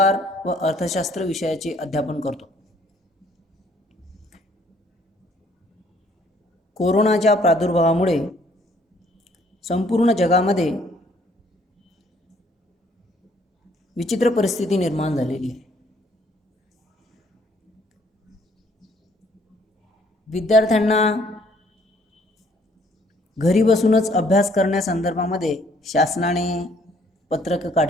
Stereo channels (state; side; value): normal; both; correlation 0.63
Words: व अर्थशास्त्र विषयाचे अध्यापन करतो। कोरोनाच्या प्रादुर्भावामुळे संपूर्ण जगामध्ये विचित्र परिस्थिती निर्माण झालेली आहे। विद्यार्थ्यांना घरी बसूनच अभ्यास करण्यासंदर्भामध्ये शासनाने पत्रक